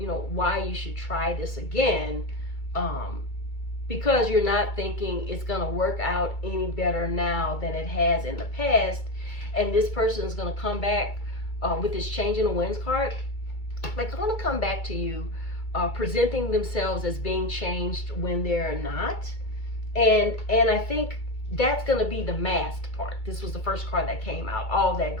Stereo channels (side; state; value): right; late; 2.3 ms